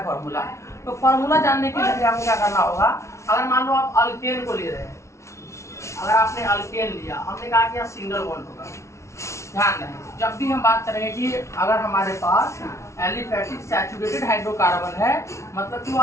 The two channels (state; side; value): late; right; 0.13 ms